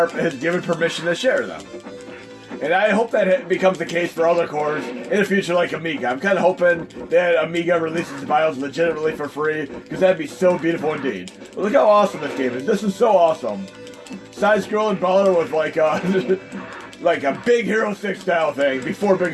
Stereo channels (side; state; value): both; identical; correlation 1.00